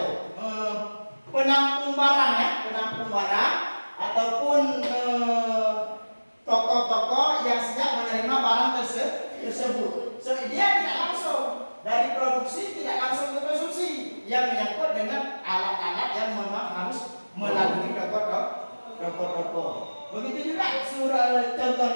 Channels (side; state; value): both; inverted; correlation -1.00